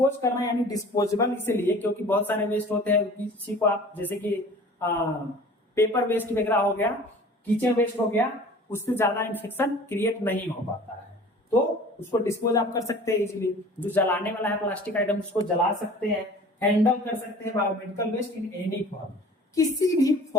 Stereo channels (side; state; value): both; normal; correlation 0.44